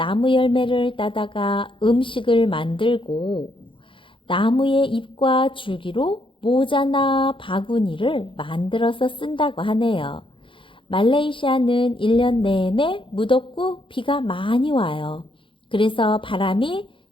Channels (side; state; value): right; late; 0.25 ms